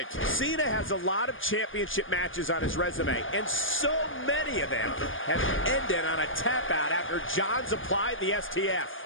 Cena has a lot of championship matches on his resume, and so many of them have ended on a tap out after John's applied the STF.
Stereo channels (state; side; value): late; right; 0.58 ms